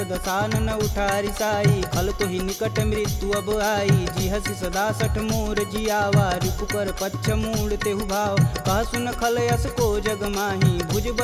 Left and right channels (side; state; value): both; identical; correlation 1.00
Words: दसानन उठारी साई खल तो ही निकट मृत्यु अब आई जी हसी सदा सठ मोर जियावा रिपु कर पच्छ मूड तेहु भाव कह सुन खल यस को जग माही भुज